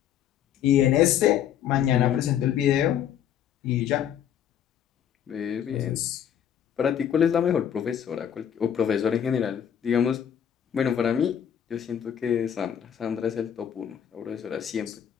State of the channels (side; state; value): right; quieter; 9.3 dB